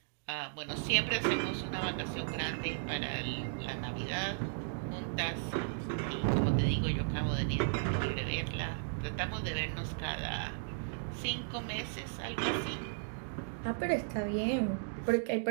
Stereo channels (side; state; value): left; silent; digital silence